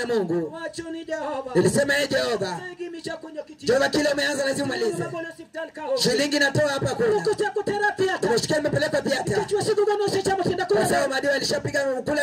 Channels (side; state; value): both; identical; correlation 1.00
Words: Mungu. Nilisema ye Jehova, Jehova kile umeanza lazima umalize. Shilingi natoa hapa kula. Nimeshikia nimepeleka theater. Kwa sababu madiwa alishapiga